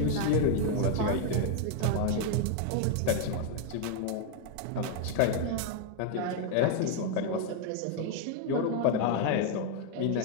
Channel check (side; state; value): both; different; correlation 0.00